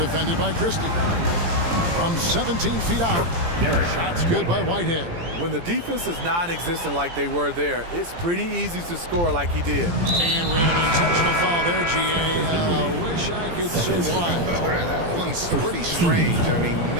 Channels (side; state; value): left; late; 17 ms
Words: by Christie. From 17 feet out. Shots good by Whitehead. When the defense is non-existent like they were there, it's pretty easy to score like he did. And we have an intentional foul there, G.A. Wish I could say why. That one's pretty strange. I mean,